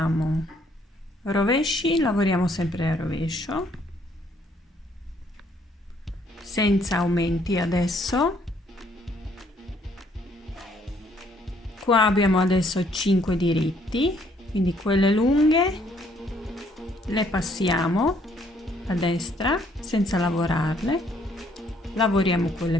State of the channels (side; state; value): both; normal; correlation 0.66